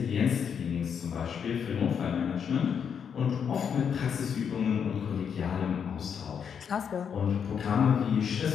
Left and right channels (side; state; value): right; quieter; 7.4 dB